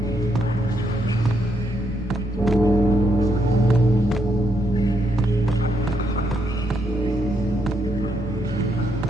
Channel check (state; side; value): noise; left; rumble, 16 dB below the sound